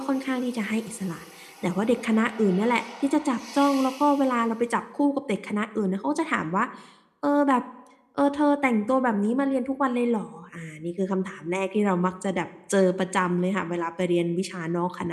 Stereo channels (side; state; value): both; identical; correlation 1.00